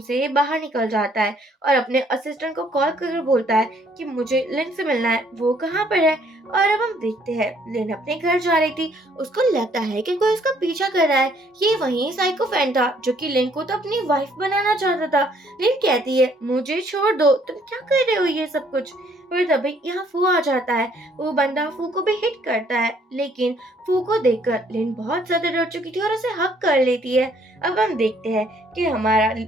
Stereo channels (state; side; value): normal; both; correlation 0.64